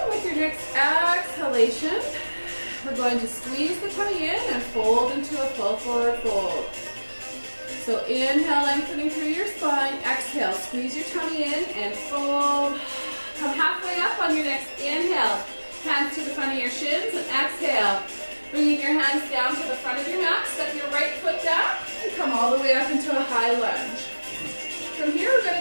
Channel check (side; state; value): both; inverted; correlation -1.00